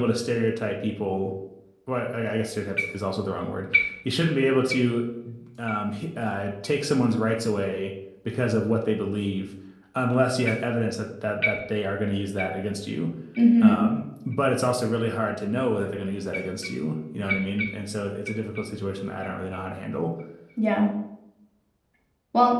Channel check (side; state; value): both; identical; correlation 1.00